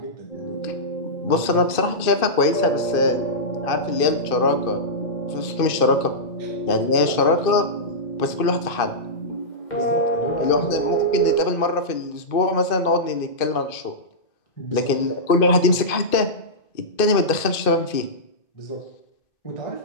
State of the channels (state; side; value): late; right; 2.5 ms